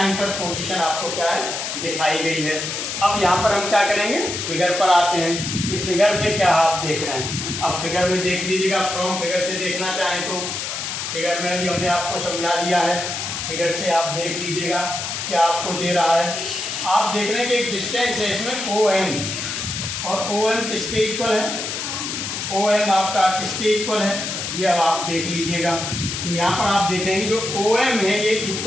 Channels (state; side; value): noise; left; hiss, 4 dB below the sound